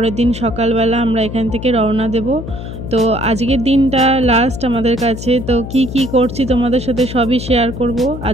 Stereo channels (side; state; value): left; noise; hum, 9 dB below the sound